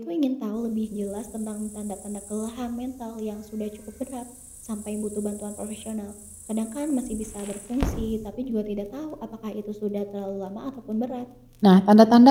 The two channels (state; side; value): identical; both; correlation 1.00